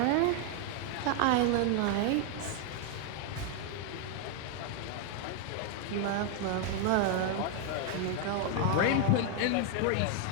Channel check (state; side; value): different; both; correlation 0.00